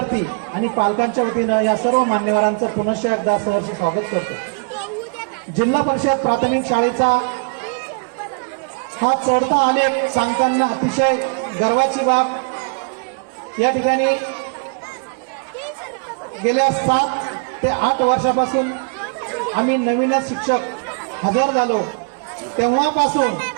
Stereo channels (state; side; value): quieter; left; 37.4 dB